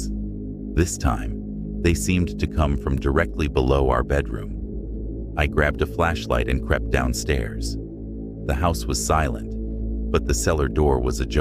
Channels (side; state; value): both; identical; correlation 1.00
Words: This time, they seemed to come from directly below our bedroom. I grabbed a flashlight and crept downstairs. The house was silent, but the cellar door was